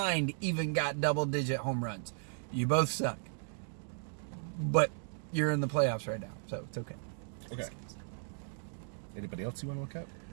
even got double-digit home runs. You both suck. But you're in the playoffs right now, so it's okay. Okay. Anybody else you want to look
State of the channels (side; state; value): left; silent; digital silence